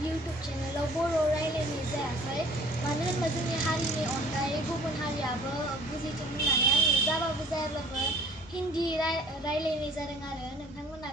इउटुब चेनेलाव बर' रायलायनाय जायाखै, मानो होनबा जोंनि हारिनि अनगायै गुबुन हारियाबो बुजिथों होननानै आङो जाबाबो जायाब्लाबो हिन्दी रायलायनाय जादों। आरो नोंथांमोना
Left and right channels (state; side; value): normal; both; correlation 0.52